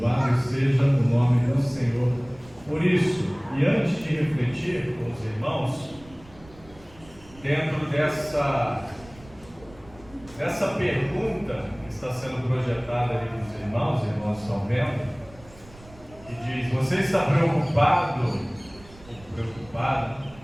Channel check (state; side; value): noise; right; rumble, 23 dB below the sound